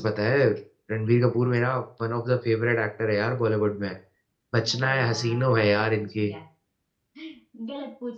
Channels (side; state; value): both; identical; correlation 1.00